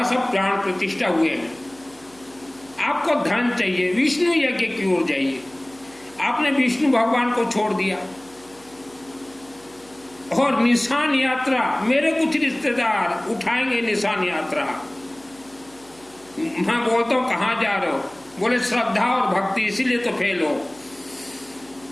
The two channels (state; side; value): noise; right; hum, 27 dB below the sound